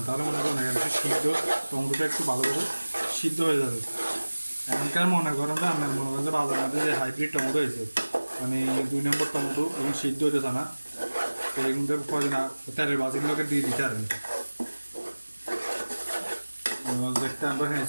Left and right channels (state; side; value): inverted; both; correlation -1.00